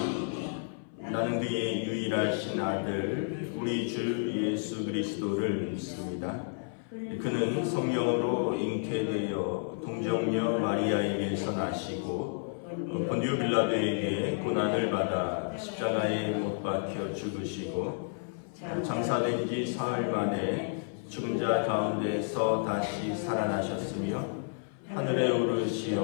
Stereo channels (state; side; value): silent; right; 57 dB below the other